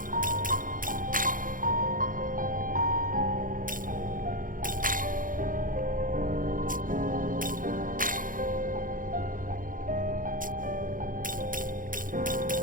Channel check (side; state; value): left; late; 0.40 ms